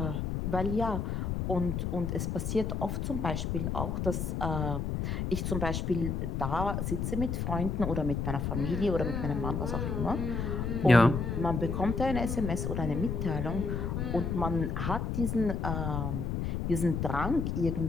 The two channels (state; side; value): noise; left; rumble, 1 dB below the sound